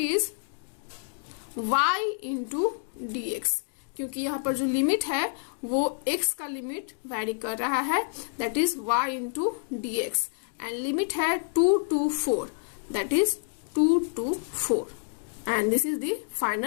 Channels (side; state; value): right; silent; digital silence